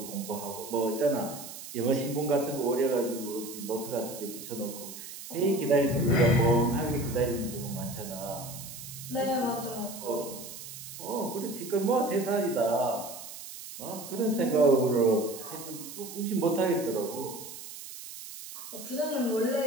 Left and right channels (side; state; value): right; noise; hiss, 12 dB below the sound